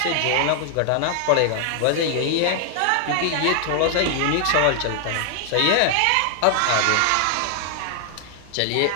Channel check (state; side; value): different; both; correlation 0.00